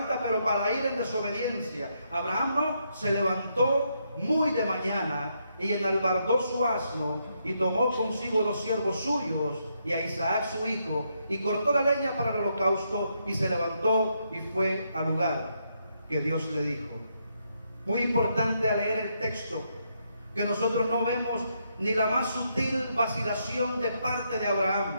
pero para ir en desobediencia. Abraham no, se levantó muy de mañana y enalbardó su asno y tomó consigo 2 siervos suyos y a Isaac su hijo y cortó la leña para el holocausto y se levantó y fue al lugar que Dios le dijo. Muy importante al leer el texto, que nosotros no vemos ni la más sutil vacilación de parte de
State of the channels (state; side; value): inverted; both; correlation -0.78